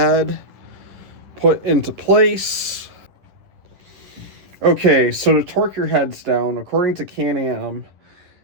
put into place. Okay, so to torque your heads down, according to Can-Am,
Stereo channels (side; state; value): left; late; 10 ms